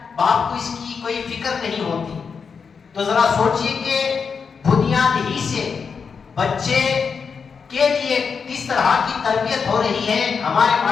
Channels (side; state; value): right; quieter; 5.8 dB